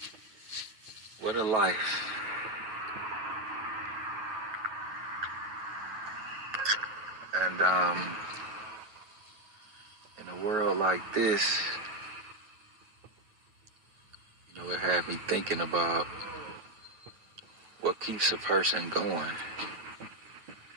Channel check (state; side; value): late; left; 9.3 ms